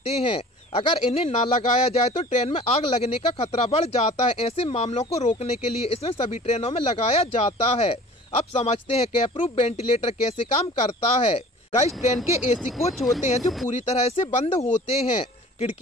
हैं। अगर इन्हें ना लगाया जाए तो ट्रेन में आग लगने का खतरा बढ़ जाता है। ऐसे मामलों को रोकने के लिए इसमें सभी ट्रेनों में लगाया जाता है। अब समझते हैं कैपरूफ वेंटिलेटर कैसे काम करता है। गाइस, ट्रेन के एसी कोच होते हैं जो पूरी तरह से बंद होते हैं।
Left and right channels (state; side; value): normal; both; correlation 0.45